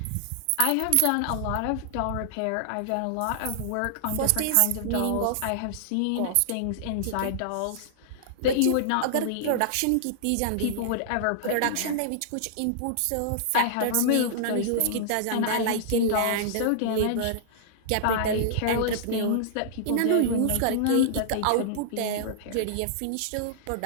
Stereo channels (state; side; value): different; both; correlation -0.01